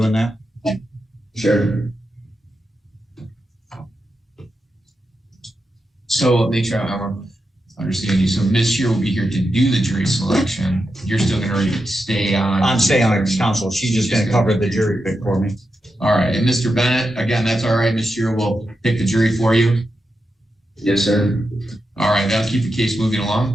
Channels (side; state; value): both; normal; correlation 0.88